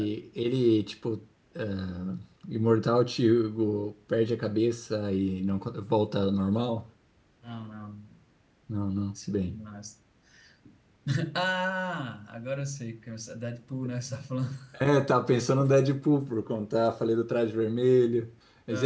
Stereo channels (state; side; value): identical; both; correlation 1.00